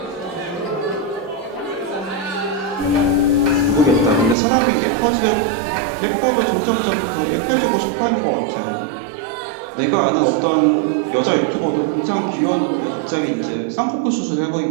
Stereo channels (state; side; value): drops out; left; at 4.4 s